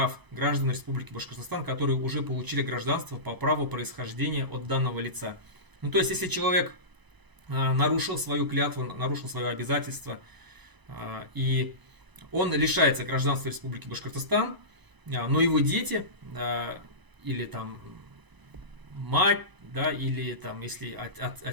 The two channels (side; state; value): left; late; 1.0 ms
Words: граждан Республики Башкортостан, которые уже получили гражданство по праву происхождения от данного лица. Ну, то есть, если человек нарушил свою клятву, нарушил свое обязательство, и он лишается гражданства Республики Башкортостан, но его дети, или там мать, да, или там, если